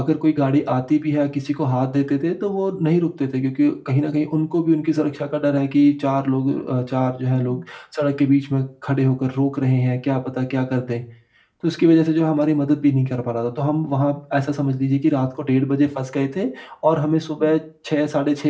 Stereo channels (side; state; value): both; identical; correlation 1.00